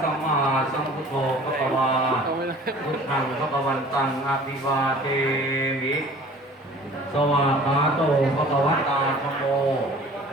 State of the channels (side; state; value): both; normal; correlation 0.47